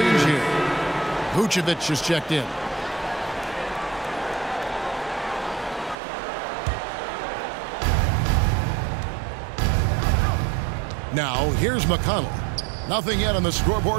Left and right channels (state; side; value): drops out; left; at 6.0 s